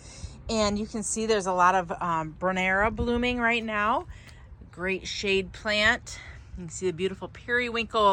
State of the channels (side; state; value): both; identical; correlation 1.00